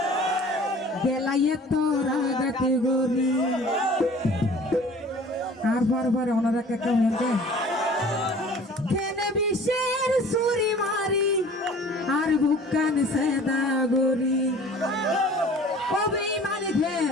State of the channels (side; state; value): both; normal; correlation 0.47